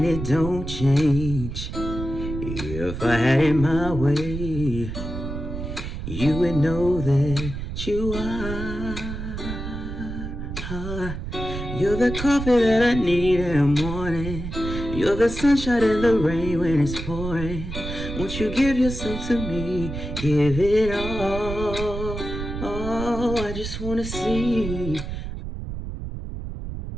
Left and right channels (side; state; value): right; noise; rumble, 7 dB below the sound